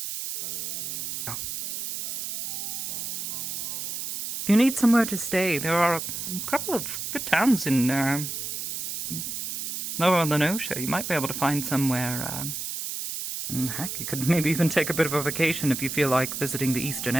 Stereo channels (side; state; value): right; noise; hiss, 4 dB below the sound